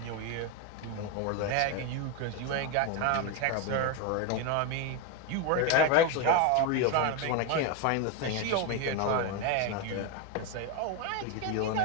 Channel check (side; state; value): both; different; correlation 0.02